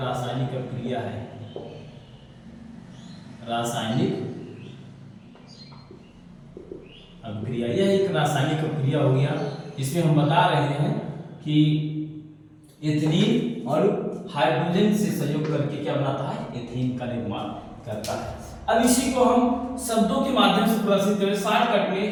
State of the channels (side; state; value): both; identical; correlation 1.00